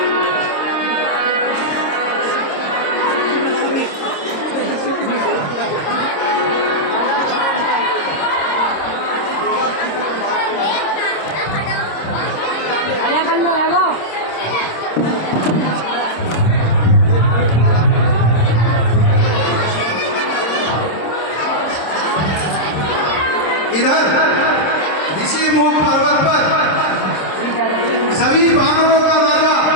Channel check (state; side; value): late; right; 26 ms